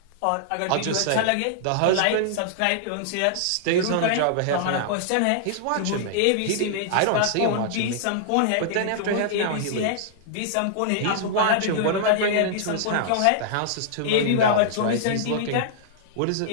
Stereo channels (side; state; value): both; different; correlation -0.01